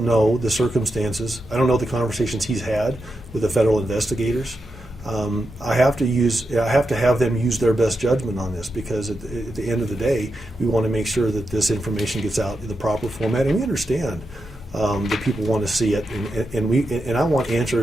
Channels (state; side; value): normal; both; correlation 0.87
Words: know the circumstances. I don't know the conversations he's had with the federal investigators. I have to have them use their best judgment on this, because at the end of the day, we want to make sure that this information gets out in the proper format, and we understand that people want to see it, and I want